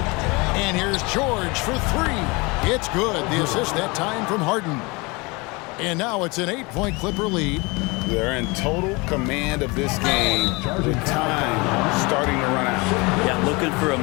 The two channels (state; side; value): quieter; right; 26.3 dB